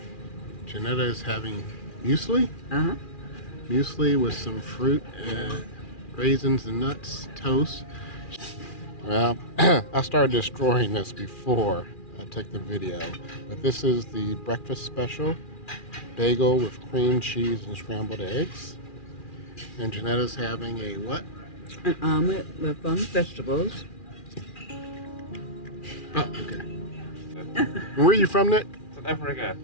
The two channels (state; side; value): late; right; 2.4 ms